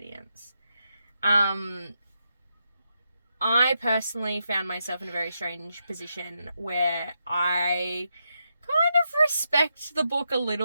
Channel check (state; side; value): inverted; both; correlation -0.83